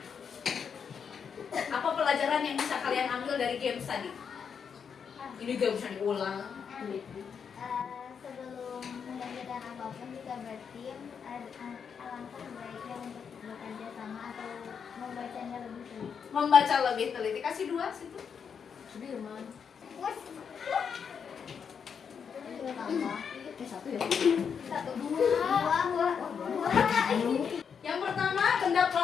dari games tadi? Ini gak bisa diulang. Sebelum mengerjakan apapun jika bertim, alangkah baiknya untuk bekerja sama atau membacanya lebih teliti. Membaca lebih teliti. Kasih 2 situ. Sudirman. Satu ya? Dua. Yang pertama, benda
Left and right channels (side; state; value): right; quieter; 6.8 dB